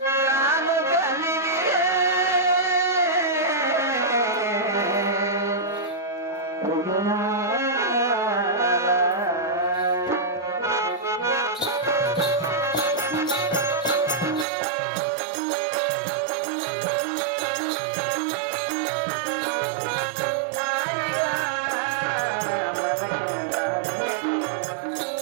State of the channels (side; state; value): left; drops out; at 14.5 s